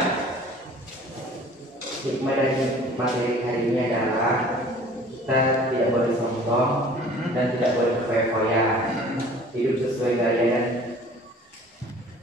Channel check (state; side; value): normal; both; correlation 0.49